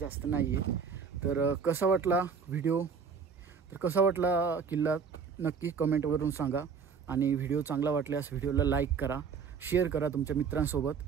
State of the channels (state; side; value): quieter; left; 6.0 dB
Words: नाही आहे। तर कसा वाटला व्हिडिओ, तर कसा वाटला किल्ला नक्की कमेंटवरून सांगा आणि व्हिडिओ चांगला वाटल्यास व्हिडिओला लाईक करा, शेअर करा तुमच्या मित्रांसोबत,